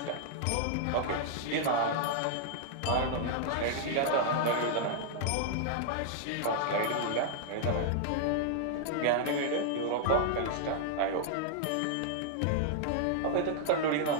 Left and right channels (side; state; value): both; different; correlation -0.01